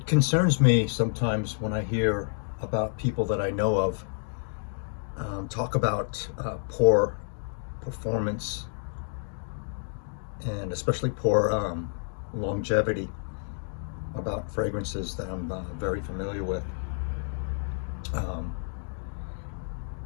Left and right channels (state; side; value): silent; right; digital silence